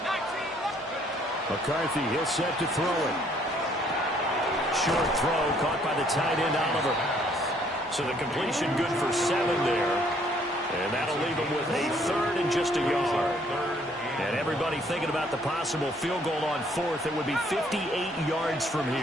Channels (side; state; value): both; normal; correlation 0.64